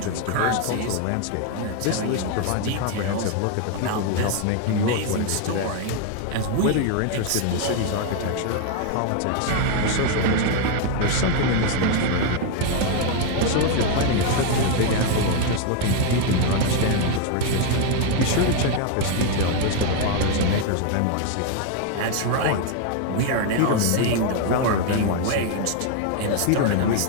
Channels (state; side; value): different; both; correlation 0.01